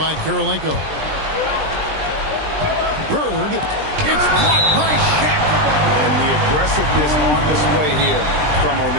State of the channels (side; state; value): left; late; 20 ms